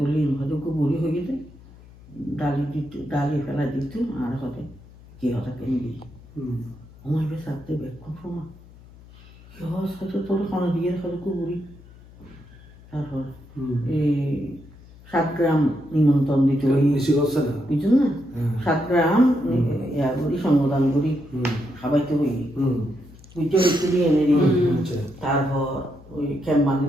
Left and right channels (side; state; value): left; noise; hum, 22 dB below the sound